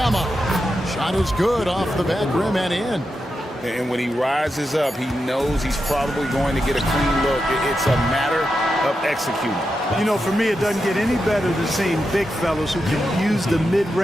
Shot is good off the back rim and in. And when he rises up, he knows he's probably going to get a clean look. It's a matter of executing. You know, for me, it doesn't get any better than seeing big fellas who can use the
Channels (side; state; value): both; normal; correlation 0.88